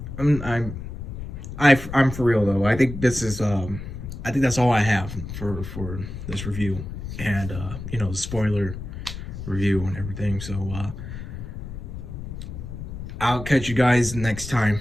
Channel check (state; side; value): noise; left; rumble, 9 dB below the sound